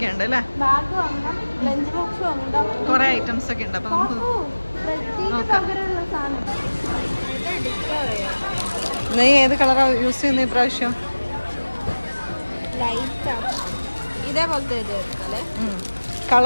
അല്ലേ? കുറെ ഐറ്റംസ് ഒക്കെ ഉണ്ട്. അപ്പൊ നമുക്ക് നോക്കാം. നീ ഏത് കളറാ യൂസ് ചെയ്യുന്നത് ഇപ്രാവശ്യം? ഇതേപോലത്തെ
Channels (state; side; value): inverted; both; correlation -1.00